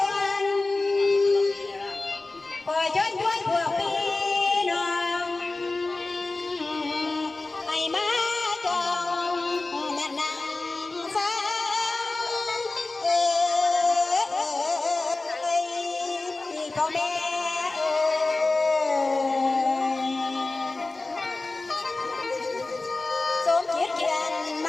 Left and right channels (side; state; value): right; quieter; 3.3 dB